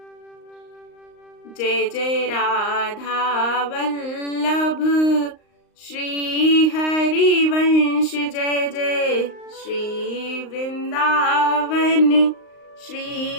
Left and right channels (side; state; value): right; late; 38 ms